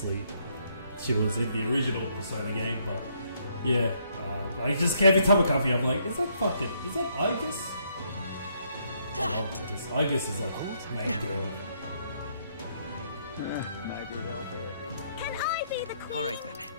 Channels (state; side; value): inverted; both; correlation -0.71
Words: she was in the original Persona game. But yeah, I just every time I come here, I'm like, is that Argus? I love Argus. Argus is like main girl. Maybe there'll be a big Can I be the queen? Alright then.